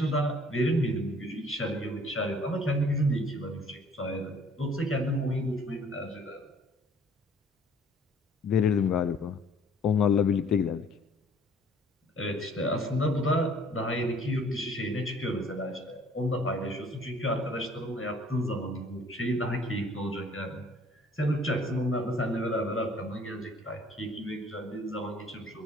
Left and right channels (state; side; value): normal; both; correlation 0.56